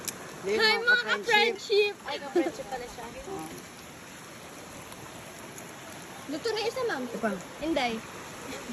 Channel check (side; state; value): both; identical; correlation 1.00